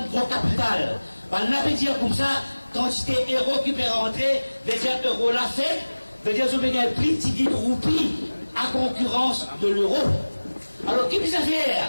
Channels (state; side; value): inverted; both; correlation -1.00